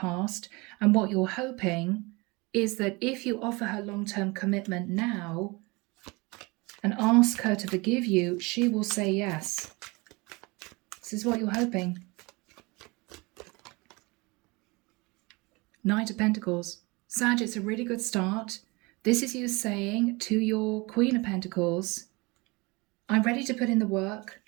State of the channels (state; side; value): quieter; left; 25.6 dB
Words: and what you're hoping is that if you offer her long-term commitment now, and ask her to forgive you, she will say yes. This is what you're hoping. Knight of Pentacles. Sag, it's a really good start. This is you saying to your Queen of Pentacles, I'm ready to put in the work.